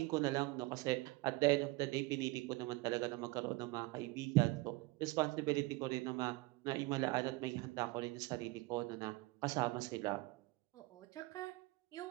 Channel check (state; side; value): quieter; left; 22.4 dB